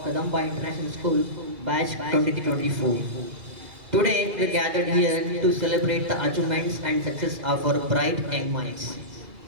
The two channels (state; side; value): late; left; 2.3 ms